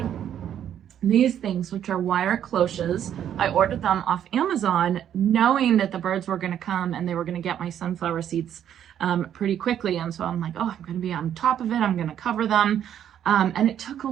these things, which are wire cloches. I ordered them off Amazon, knowing that the birds were going to come and they were going to get my sunflower seeds pretty quickly. And so I'm like, oh, I'm going to be on top of it. I'm going to cover them. And it took a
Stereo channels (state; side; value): quieter; left; 9.9 dB